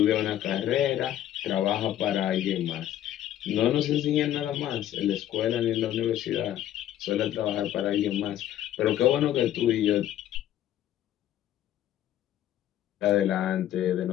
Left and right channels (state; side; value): quieter; right; 12.0 dB